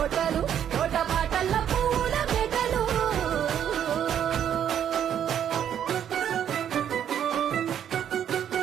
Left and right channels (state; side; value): quieter; left; 9.5 dB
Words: తోట బాటల పువ్వుల మెటలు